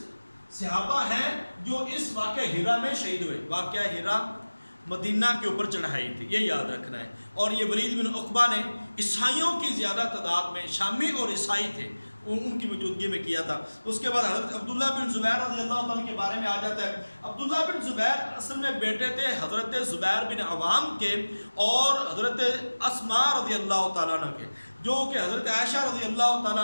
صحابہ ہیں جو اس واقعہ ہیرا میں شہید ہوئے۔ واقعہ ہیرا مدینہ کے اوپر چڑھائی تھی، یہ یاد رکھنا ہے۔ اور یہ ولید بن عقبہ نے عیسائیوں کی زیادہ تعداد میں، شامی اور عیسائی تھے، ان کی موجودگی میں کیا تھا۔ اس کے بعد حضرت عبداللہ بن زبیر رضی اللہ تعالیٰ کے بارے میں آ جاتا ہے۔ عبداللہ بن زبیر اصل میں بیٹے تھے حضرت زبیر بن عوام کے اور حضرت اسماء رضی اللہ تعالیٰ عنہ کے، جو کہ حضرت عائشہ رضی اللہ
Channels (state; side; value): inverted; both; correlation -1.00